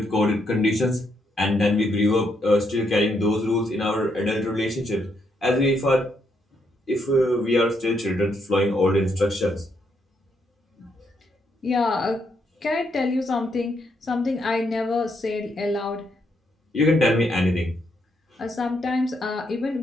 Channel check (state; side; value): normal; both; correlation 0.76